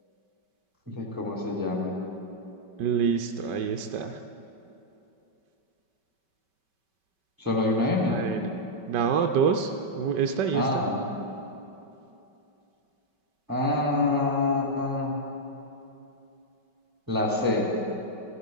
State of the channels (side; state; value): left; late; 5.2 ms